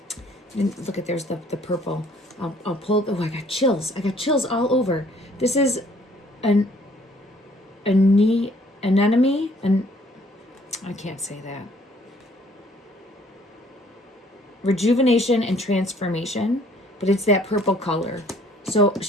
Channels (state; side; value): normal; both; correlation 0.60